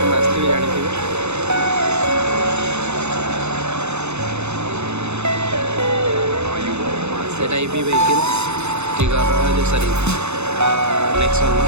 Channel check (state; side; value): late; left; 0.81 ms